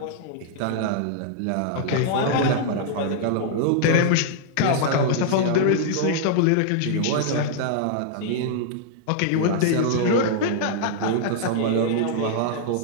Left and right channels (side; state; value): both; different; correlation -0.01